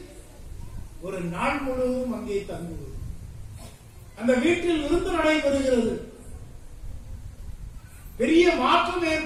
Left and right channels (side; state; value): both; identical; correlation 1.00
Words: ஒரு நாள் முழுவதும் அங்கே தங்குவது. அந்த வீட்டில் விருந்து நடைபெறுகிறது. பெரிய மாற்றம்